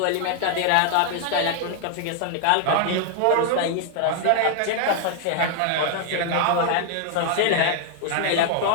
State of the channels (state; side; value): different; both; correlation 0.00